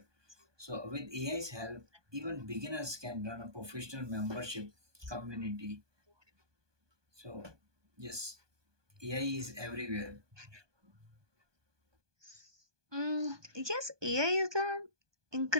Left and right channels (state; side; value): late; left; 1.2 ms